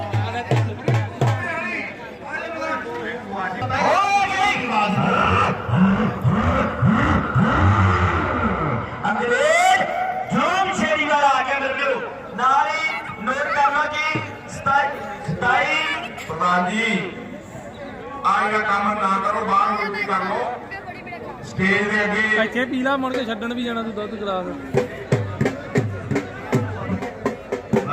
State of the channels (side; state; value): both; identical; correlation 1.00